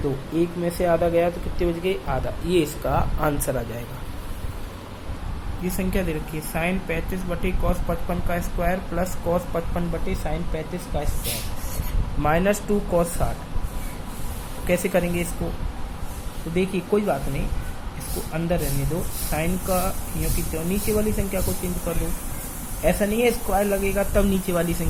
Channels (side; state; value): both; identical; correlation 1.00